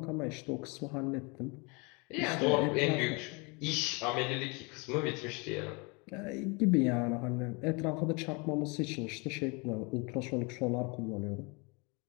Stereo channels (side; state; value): right; quieter; 30.0 dB